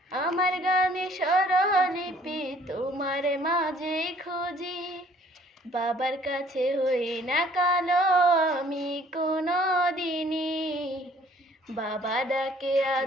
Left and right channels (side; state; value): both; normal; correlation 0.58